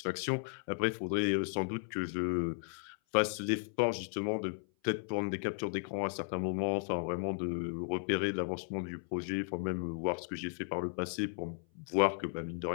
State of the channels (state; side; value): silent; right; 54 dB below the other